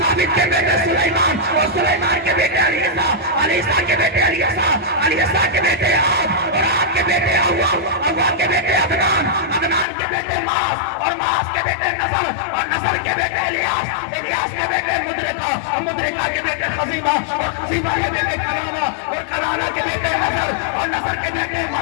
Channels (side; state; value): right; drops out; at 9.9 s